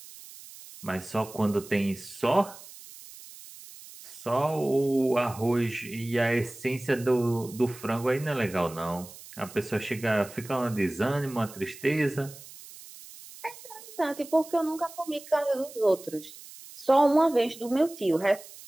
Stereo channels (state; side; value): noise; right; hiss, 17 dB below the sound